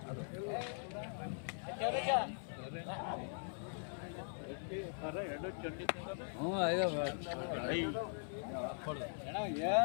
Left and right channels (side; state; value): right; silent; 50 dB below the other